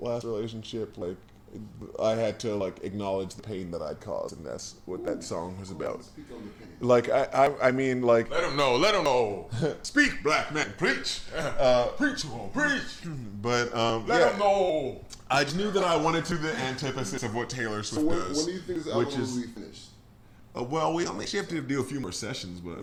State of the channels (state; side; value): identical; both; correlation 1.00